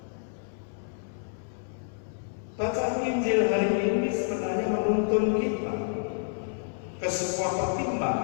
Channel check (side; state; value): right; silent; digital silence